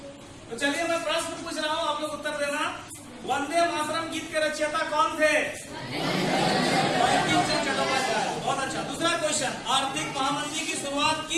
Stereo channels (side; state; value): both; identical; correlation 1.00